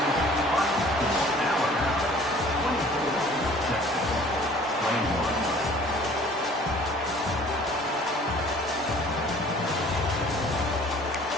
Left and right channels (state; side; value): normal; both; correlation 0.51